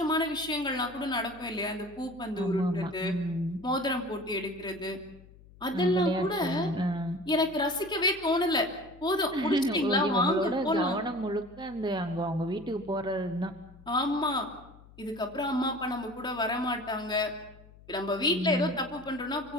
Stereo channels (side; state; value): left; noise; hum, 23 dB below the sound